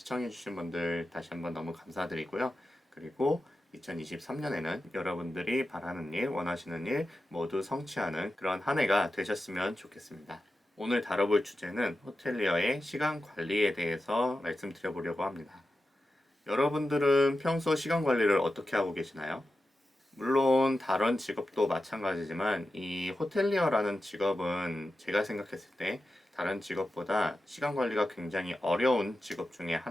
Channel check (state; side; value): normal; both; correlation 0.92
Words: 분들 다시 한번 너무 감사드리고요. 그리고 2023년에는 여러분들이 바라는 일, 원하시는 일 모두 성취하는 그런 한 해가 되셨으면 좋겠습니다. 오늘 다뤄볼 주제는 호텔리어의 시간 관리에 대해서 말씀드려보려고 합니다. 여러분들은 평소 시간 관리를 어떻게 하고 계시나요? 물론 다른 직업도 마찬가지지만 이 호텔리어라는 직업은 제가 생각했을 때 다른 직업보다 시간 관리가 굉장히 어려운 직업 중에